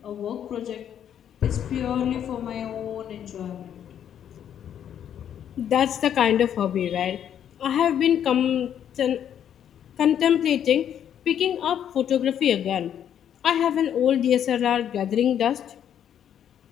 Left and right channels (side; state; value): right; quieter; 9.5 dB